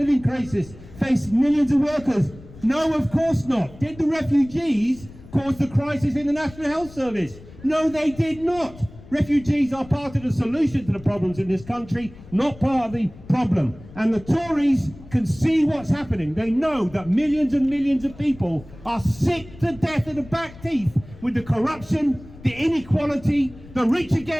crisis, face millions of workers? No, of course not. Did the refugees cause the crisis in the National Health Service? No, they did not. Refugees are part of the solution to the problems in this country, not part of the problem. And the Tories can see what's happening. They know that millions and millions of people are sick to death of the back teeth with the corruption, the inequality, the rich are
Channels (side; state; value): left; noise; rumble, 19 dB below the sound